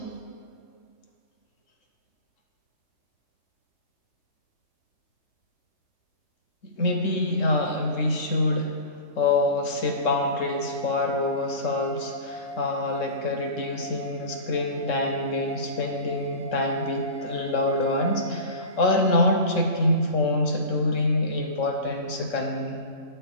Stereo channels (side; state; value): right; late; 3.7 ms